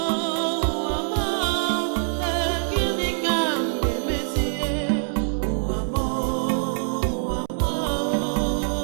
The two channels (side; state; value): left; silent; 62 dB below the other